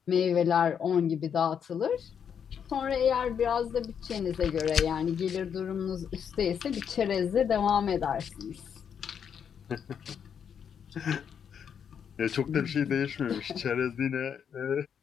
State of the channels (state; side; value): quieter; right; 7.7 dB